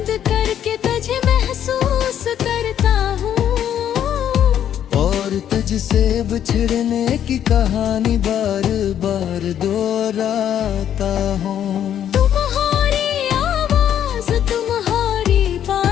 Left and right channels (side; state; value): right; quieter; 10.1 dB